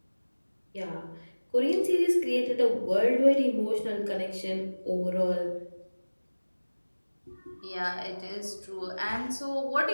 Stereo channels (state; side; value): inverted; both; correlation -1.00